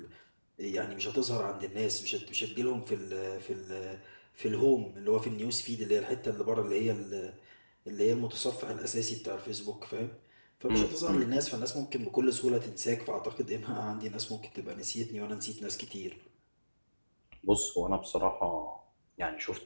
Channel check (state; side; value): inverted; both; correlation -1.00